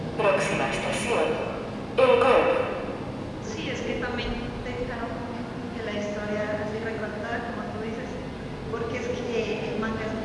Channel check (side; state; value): both; identical; correlation 1.00